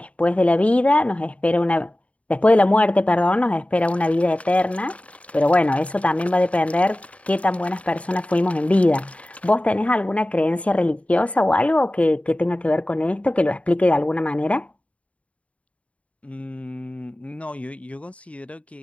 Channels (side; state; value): right; late; 0.065 ms